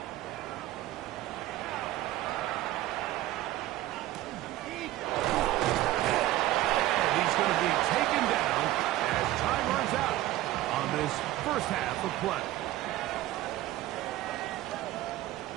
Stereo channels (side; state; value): left; quieter; 15.5 dB